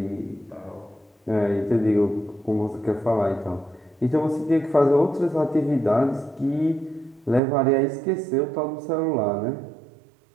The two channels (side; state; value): left; drops out; at 7.4 s